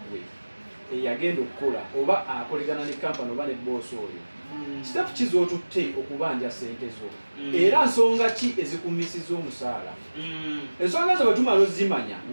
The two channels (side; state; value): both; inverted; correlation -1.00